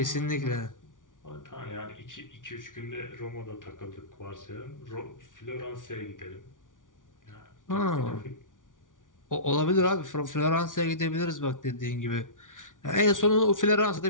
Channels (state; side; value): late; right; 0.88 ms